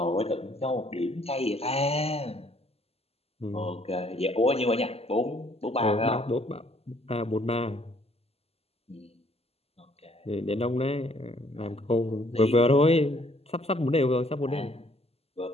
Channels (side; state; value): right; late; 0.29 ms